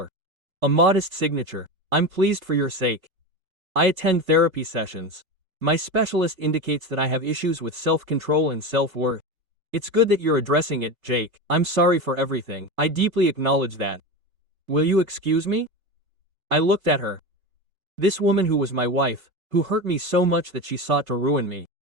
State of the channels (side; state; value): left; late; 3.3 ms